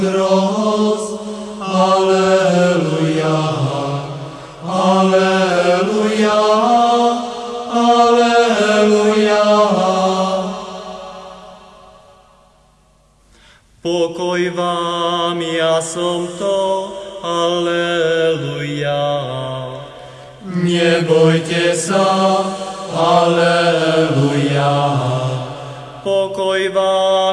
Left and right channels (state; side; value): identical; both; correlation 1.00